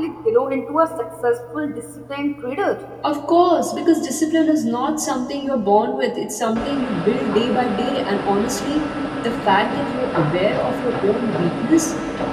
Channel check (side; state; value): both; identical; correlation 1.00